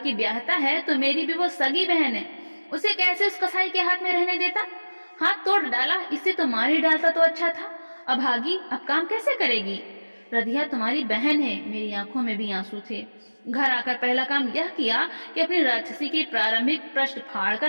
ब्याहता है तो मेरी भी वो सगी बहन है। उसे कैसे उस कसाई के हाथ में रहने देता? हाथ तोड़ डाला, इससे तो मार ही डालता तो अच्छा था। अभागी, अब काम कैसे करेगी? रधिया तुम्हारी बहन है। मेरी आंखों में भी आंसू थे। घर आकर पहला काम यह किया कि अपनी राक्षसी के प्रारंभिक पृष्ठ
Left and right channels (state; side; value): inverted; both; correlation -1.00